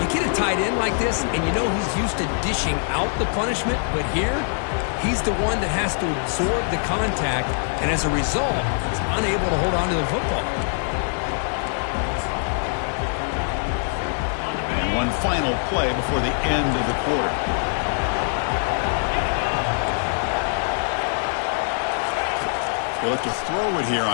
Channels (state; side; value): silent; right; 63 dB below the other